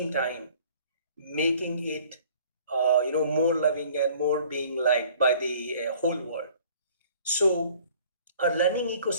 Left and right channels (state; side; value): inverted; both; correlation -0.53